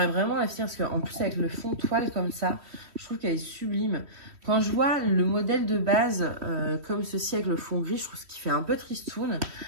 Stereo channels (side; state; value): left; late; 3.1 ms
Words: vraiment la finir parce qu'en plus, avec le fond toile comme ça, je trouve qu'elle est sublime. Quand je vois le modèle de base comme ceci avec le fond gris, je trouve qu'il fait un peu tristoun.